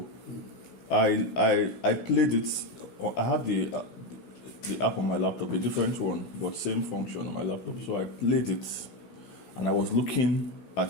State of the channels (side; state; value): right; late; 17 ms